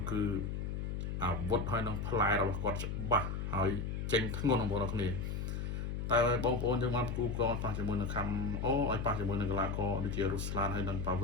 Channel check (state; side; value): noise; left; hum, 3 dB below the sound